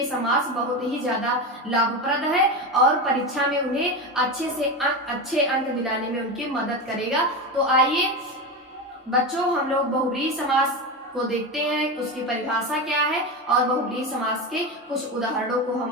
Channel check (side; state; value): both; normal; correlation 0.19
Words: समास बहुत ही ज्यादा लाभप्रद है और परीक्षा में उन्हें अच्छे अंक दिलाने में उनकी मदद करेगा। तो आइए बच्चों, हम लोग बहुव्रीहि समास को देखते हैं, उसकी परिभाषा क्या है और बहुव्रीहि समास के कुछ उदाहरणों को हम